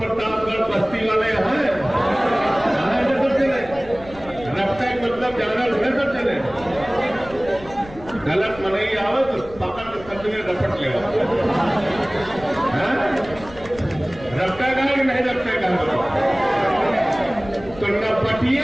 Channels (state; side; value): noise; left; rumble, 18 dB below the sound